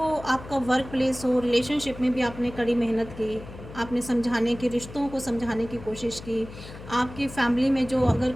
आपका वर्क प्लेस हो, रिलेशनशिप में भी आपने कड़ी मेहनत की, आपने समझाने की, रिश्तों को समझाने की कोशिश की। आपकी फैमिली में जो अगर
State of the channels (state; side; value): noise; left; hum, 15 dB below the sound